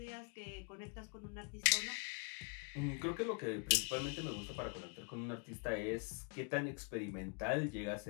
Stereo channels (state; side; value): quieter; right; 39.2 dB